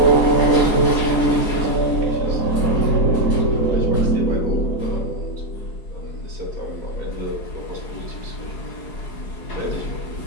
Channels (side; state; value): right; late; 4.8 ms